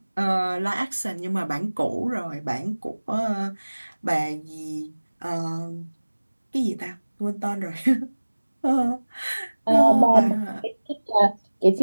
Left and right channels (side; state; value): both; inverted; correlation -1.00